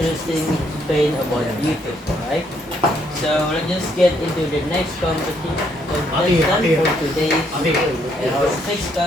explain about YouTube, right? So let's just get into the next contestant for today's video. And our next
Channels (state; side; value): normal; both; correlation 0.71